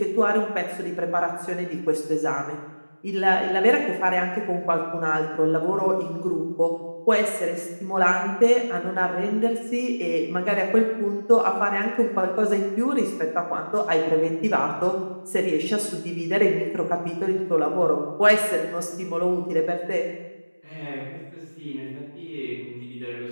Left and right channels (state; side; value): inverted; both; correlation -1.00